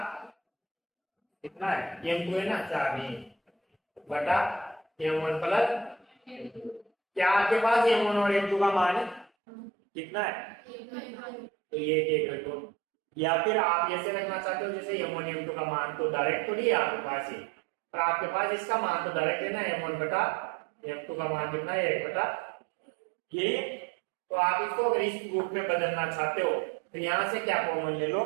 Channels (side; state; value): left; drops out; at 9.3 s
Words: कितना है m2 है ना 4 नहीं बटा m1 प्लस, क्या आपके पास m1 और m2 का मान कितना है, तो ये एक रखो, या फिर आप ऐसे रखना चाहते हो जैसे m1 m2 का मान तो डायरेक्ट तो नहीं है आपके पास ही, पर आपके पास इसका मान तो डायरेक्ट है ना, m1 बटा m2 का मान कितना है 1 बटा ये, तो आप इसको अगर इस रूप में बदलना चाहते हो तो यहां से क्या कॉमन ले लो